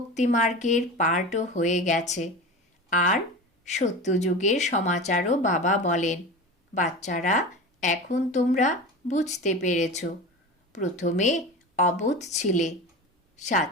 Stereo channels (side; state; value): both; normal; correlation 0.30